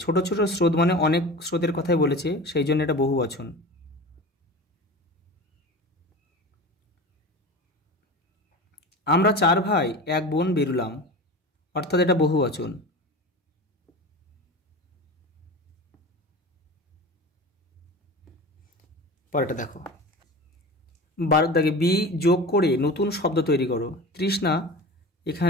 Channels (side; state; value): both; normal; correlation 0.33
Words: ছোট ছোট স্রোত মানে অনেক স্রোতের কথাই বলেছে, সেই জন্য এটা বহু বচন। আমরা 4 ভাই 1 বোন বেরুলাম, অর্থাৎ এটা বহু বচন। পরেরটা দেখো, 12 দাগে, বি যোগ করে নতুন শব্দ তৈরি করো। তৃষ্ণা,